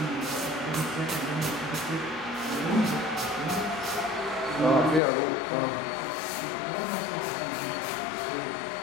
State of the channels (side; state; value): right; drops out; at 5.0 s